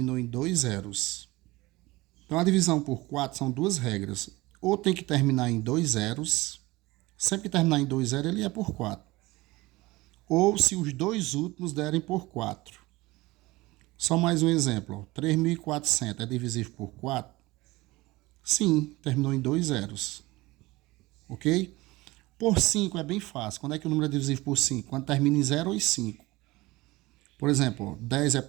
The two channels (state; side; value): quieter; left; 20.6 dB